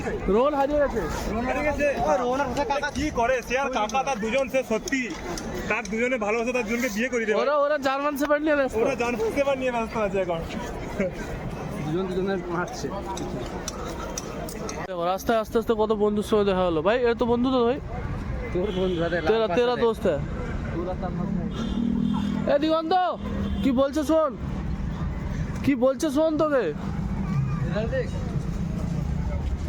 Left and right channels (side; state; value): both; identical; correlation 1.00